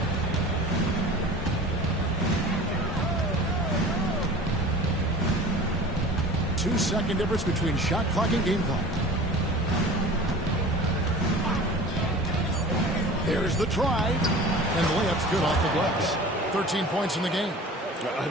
Two-second difference between shot clock and game clock. There's the try, and the layup's good off the glass. 13 points in the game.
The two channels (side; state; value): both; normal; correlation 0.40